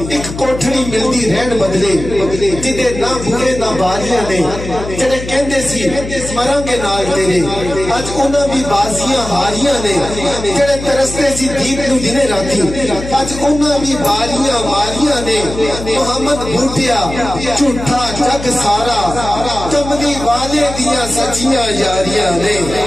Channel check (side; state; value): left; noise; hum, 9 dB below the sound